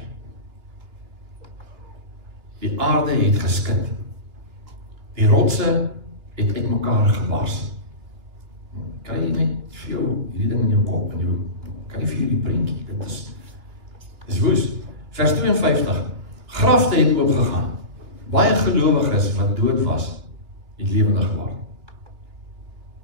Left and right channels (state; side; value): late; left; 3.0 ms